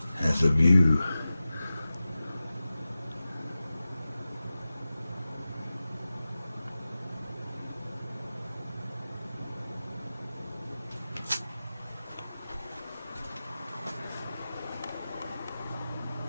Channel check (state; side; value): inverted; both; correlation -0.95